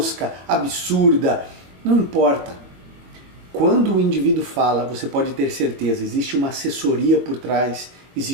absurda, não importa. Quando o indivíduo fala, você pode ter certeza, existe uma assessoria por trás,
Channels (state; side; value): late; left; 22 ms